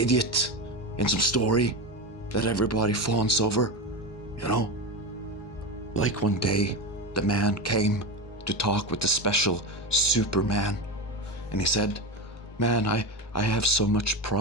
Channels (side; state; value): both; normal; correlation 0.20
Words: in some story that everybody fawns over, Like one day, the man came to talk with the special Superman, and he said, "Man, I have so much